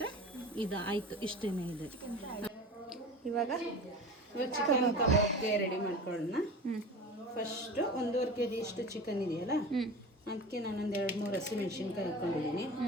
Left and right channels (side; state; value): both; normal; correlation 0.34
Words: ಇದು ಆಯಿತು. ಇಷ್ಟೇ ಇದೆ. ಇವಾಗ ಚಿಕನ್ ಕಬಾಬ್ಗೆ ರೆಡಿ ಮಾಡ್ಕೊಳ್ಳೋಣ. ಫಸ್ಟು 1.5 kg ಇಷ್ಟು ಚಿಕನ್ ಇದೆಯಲ್ಲ, ಅದಕ್ಕೆ ನಾನೊಂದು 2-3 ಹಸಿಮೆಣ್ಸಿನ್ಕಾಯಿ ಹಾಕ್ಕೊಂಡಿದ್ದೀನಿ,